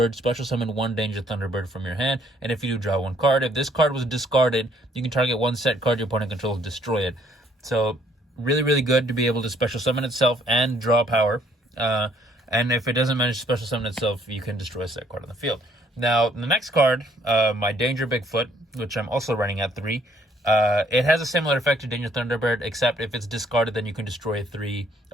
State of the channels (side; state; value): both; normal; correlation 0.64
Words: special summon 1 Danger Thunderbird from your hand. And if you do, draw 1 card. If this card was discarded, you can target 1 set card your opponent controls, destroy it. So really good to be able to special summon itself and draw power. And if it doesn't manage to special summon itself, you can destroy a set card on the field. Now, the next card, my Danger Bigfoot, which I'm also running at 3. It has a similar effect to Danger Thunderbird, except if it's discarded, then you can destroy